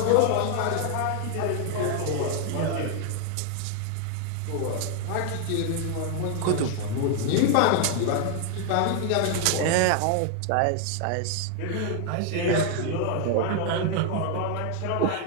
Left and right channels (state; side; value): different; both; correlation 0.00